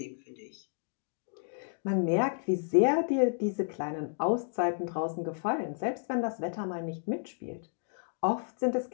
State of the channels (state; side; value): silent; right; digital silence